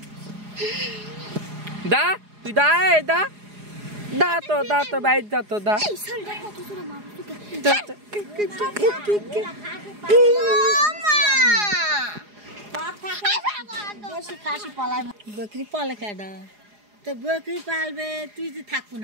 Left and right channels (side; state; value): left; late; 4.8 ms